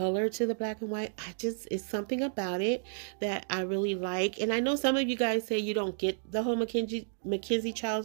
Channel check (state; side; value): silent; left; digital silence